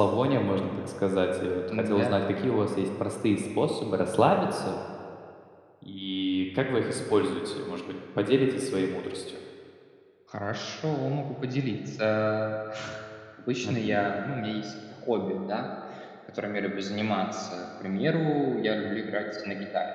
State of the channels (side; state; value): both; identical; correlation 1.00